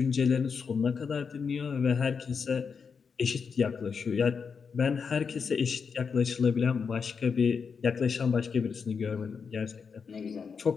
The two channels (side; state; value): right; quieter; 5.9 dB